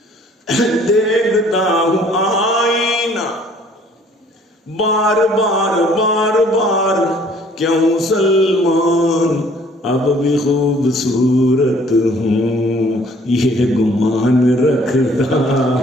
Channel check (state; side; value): normal; both; correlation 0.57